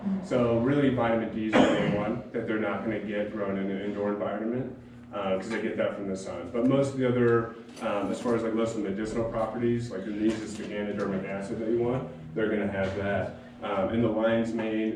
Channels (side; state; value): both; identical; correlation 1.00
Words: So really vitamin D is the main one that they're not gonna get grown in an indoor environment, because they get that from the sun. But most of the other, as far as like most of the medicinal properties, like the the ganodermic acid that you want, they're gonna have that. In the lion's